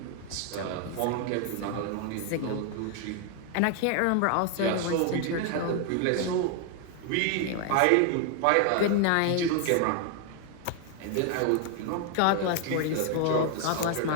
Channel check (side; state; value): both; different; correlation 0.00